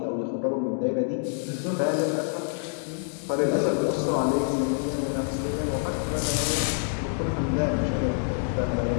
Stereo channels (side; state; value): right; silent; digital silence